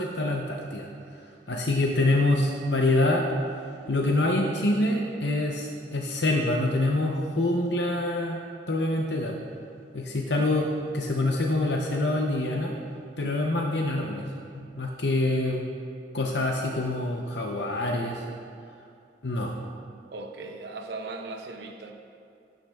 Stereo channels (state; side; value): normal; both; correlation 0.61